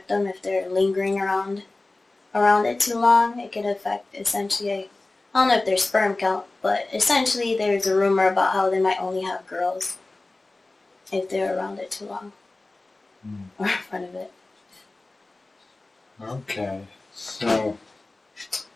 them if they're lingering around it too long. It could affect essentially, I don't know if their sperm count, but essentially there's a rumor about how they might only have girls if they're around it too long or in front of it. Okay. So,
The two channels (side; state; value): right; quieter; 3.1 dB